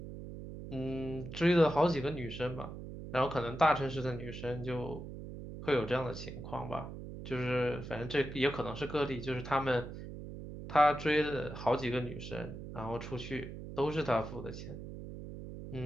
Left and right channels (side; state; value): right; noise; hum, 10 dB below the sound